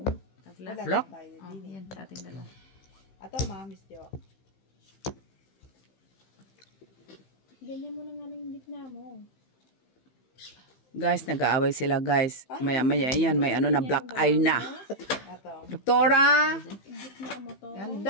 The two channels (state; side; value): late; right; 15 ms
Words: Tabla. wala Block. lang tayo Oh, din. yan. Sa ating dalawa. Ato, Miss Jo. Ganyan mo na nga lang yung gitna mo. Guys, nag-aaway sila guys. Maya-maya yan. May ano na black eye na. Ato. Doktora! Yung gitna mo to.